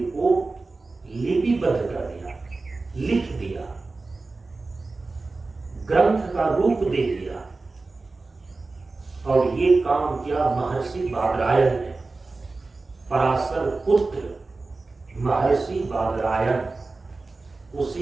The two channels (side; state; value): left; quieter; 3.6 dB